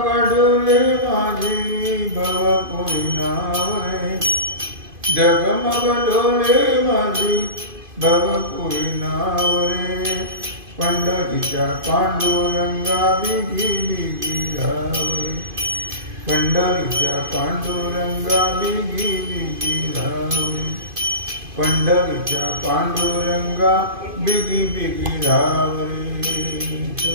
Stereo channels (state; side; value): late; left; 2.5 ms